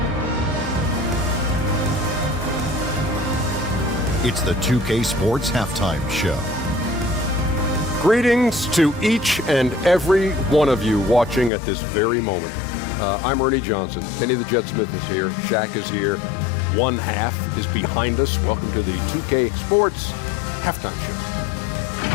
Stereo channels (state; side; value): drops out; right; at 11.5 s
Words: It's the 2K Sports Halftime Show. Greetings to each and every one of you watching at this very moment. I'm Ernie Johnson. Kenny the Jet Smith is here. Shaq is here. One half is behind us. Welcome to the 2K Sports Halftime Show.